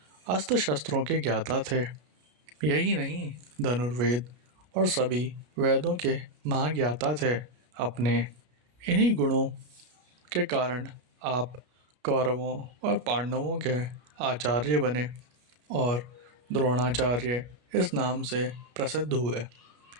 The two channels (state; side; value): late; left; 33 ms